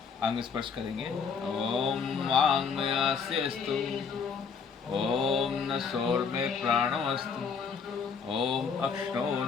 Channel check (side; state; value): right; quieter; 5.9 dB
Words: अंग स्पर्श करेंगे। ओम वाङ्मयास्यस्तु। ओम नसोर्मे प्राणो अस्तु। ओम